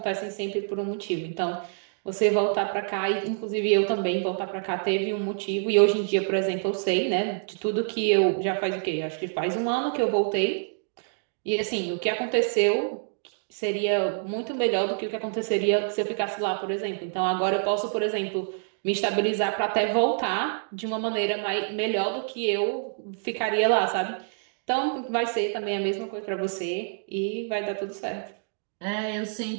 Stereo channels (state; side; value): silent; left; digital silence